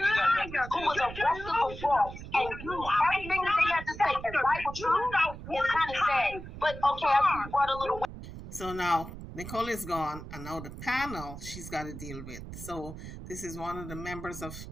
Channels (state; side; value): noise; right; rumble, 11 dB below the sound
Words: who was arrested for fraud and use everything that they had to say as Bible truth is kind of sad. But okay, I think you brought a little. So now Nicole is gone, and now the panel she's got to deal with. So this is one of the members of